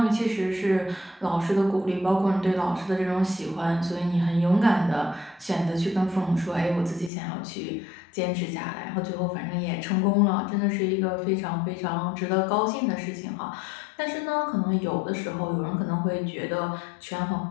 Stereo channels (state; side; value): drops out; right; at 7.1 s